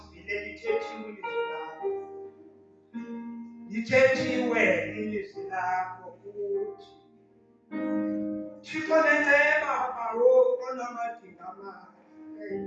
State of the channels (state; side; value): identical; both; correlation 1.00